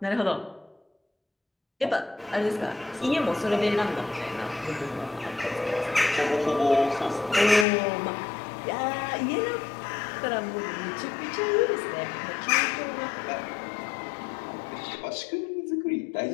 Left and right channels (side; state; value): right; drops out; at 7.7 s